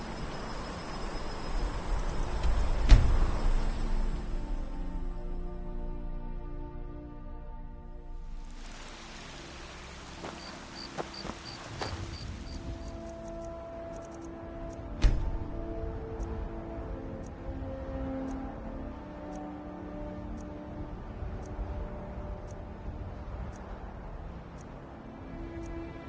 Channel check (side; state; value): both; identical; correlation 1.00